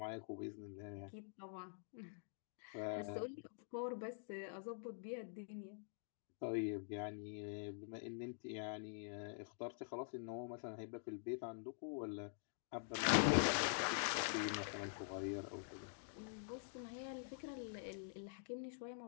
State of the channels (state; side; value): silent; right; digital silence